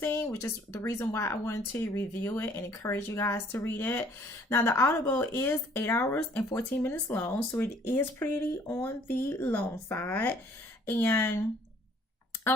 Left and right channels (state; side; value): normal; both; correlation 0.59